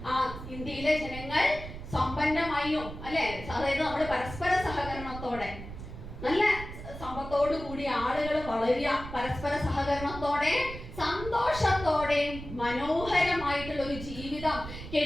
ഇന്ത്യയിലെ ജനങ്ങൾ സമ്പന്നമായും അല്ലെ, അതായത് നമ്മുടെ പരസ്പര സഹകരണത്തോടെ നല്ല സമ്പത്തോടു കൂടി ആളുകൾ വളരുക, പരസ്പര സഹകരണത്തോടെ സന്തോഷത്തോടെ മനോഹരമായിട്ടുള്ള ഒരു ജീവിതം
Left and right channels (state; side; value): noise; right; rumble, 11 dB below the sound